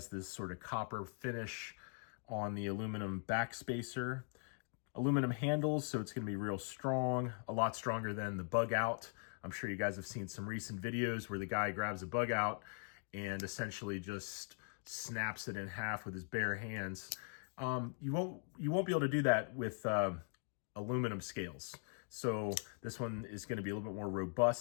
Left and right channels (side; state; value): right; silent; 50 dB below the other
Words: this sort of copper finish on the aluminum backspacer. Aluminum handles, so it's going to be real strong, a lot stronger than the bug out. I'm sure you guys have seen some recent videos where the guy grabs a bug out and essentially just snaps it in half with his bare hands. You won't be able to do that with aluminum scales. So this one is going to be a little bit more